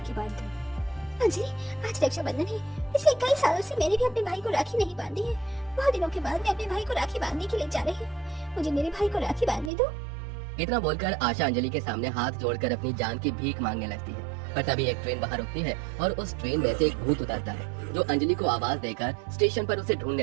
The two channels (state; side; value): drops out; left; at 9.7 s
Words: बांध दूं। अंजलि, आज रक्षाबंधन है। पिछले कई सालों से मैंने भी अपने भाई को राखी नहीं बांधी है। बहुत दिनों के बाद मैं अपने भाई को राखी बांधने के लिए जा रही हूँ। मुझे मेरे भाई को राखी बांधने दो। इतना बोलकर आशा अंजलि के सामने हाथ जोड़कर अपनी जान की भीख मांगने लगती है। पर तभी एक ट्रेन बाहर रुकती है और उस ट्रेन में से एक भूत उतरता है, जो अंजलि को आवाज देकर स्टेशन पर उसे